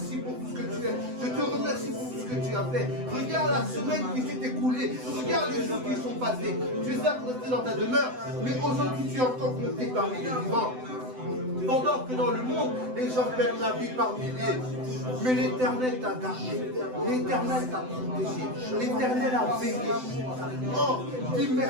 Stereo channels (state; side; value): late; left; 7.9 ms